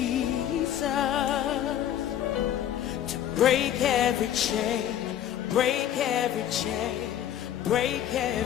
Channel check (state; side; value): quieter; right; 10.9 dB